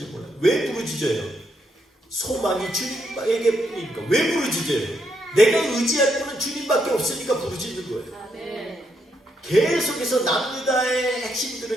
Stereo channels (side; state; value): both; normal; correlation 0.78